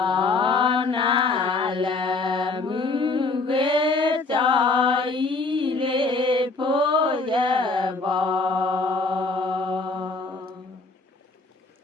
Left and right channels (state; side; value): quieter; right; 3.7 dB